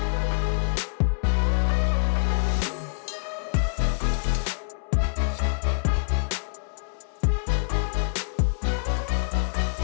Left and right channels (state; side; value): silent; right; 61 dB below the other